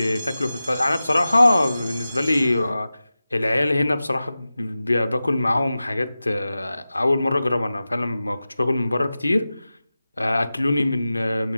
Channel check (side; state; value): both; inverted; correlation -0.95